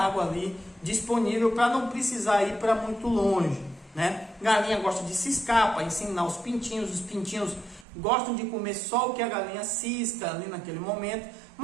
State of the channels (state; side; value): drops out; left; at 7.9 s